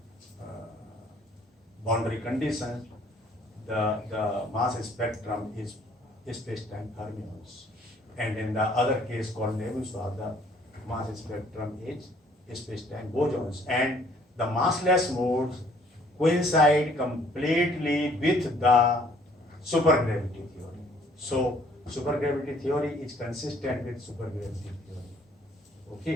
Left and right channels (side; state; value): both; normal; correlation 0.60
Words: boundary conditions, the mass spectrum is space-time fermions, and in the other case called Nebuchadnezzar, the mass spectrum is space-time bosons, and the massless modes coincide completely with the supergravity theory. So supergravity theory is consistent with supergravity theory.